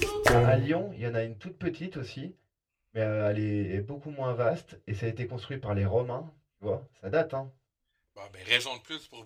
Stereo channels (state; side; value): identical; both; correlation 1.00